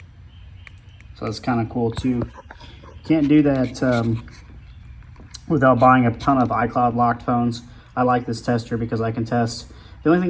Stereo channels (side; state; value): both; identical; correlation 1.00